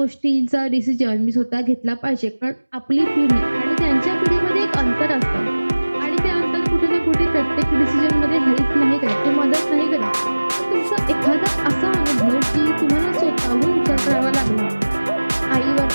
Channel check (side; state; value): both; inverted; correlation -1.00